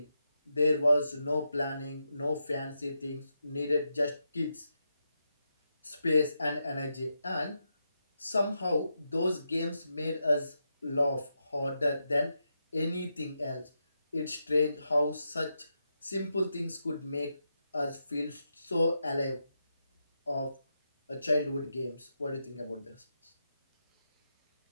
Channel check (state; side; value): inverted; both; correlation -0.86